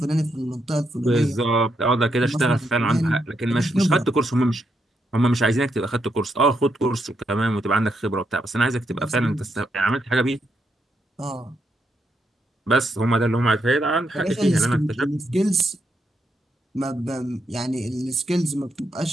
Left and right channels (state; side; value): normal; both; correlation 0.80